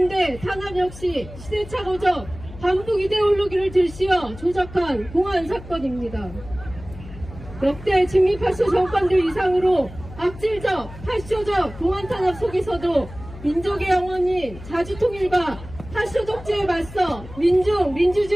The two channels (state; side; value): noise; left; hum, 15 dB below the sound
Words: 탄압 역시 시대착오적 반북 이데올로기를 들씌워 조작한 공안 사건입니다. 역대 직미파쇼 정권들 이상으로 악질적, 파쇼적 공안 탄압 속에서도 민족의 영원히 자주통일과 파쇼 독재에 맞서